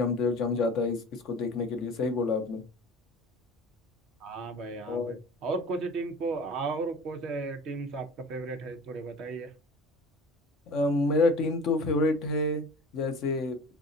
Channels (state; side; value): normal; both; correlation 0.41